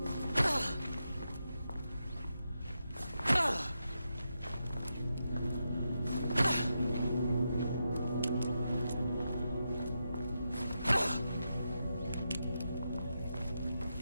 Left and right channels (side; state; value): both; inverted; correlation -0.86